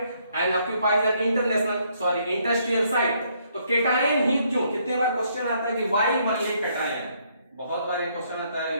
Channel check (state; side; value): inverted; both; correlation -0.70